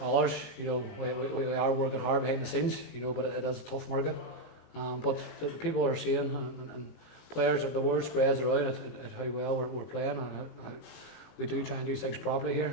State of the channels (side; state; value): right; late; 18 ms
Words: We are working hard behind the scenes, but it is a tough market. But the people are seeing, and players, the word spreads around at how well we're playing, and how we do try and do things properly here.